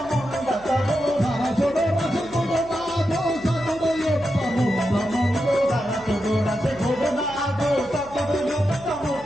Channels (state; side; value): noise; left; hum, 21 dB below the sound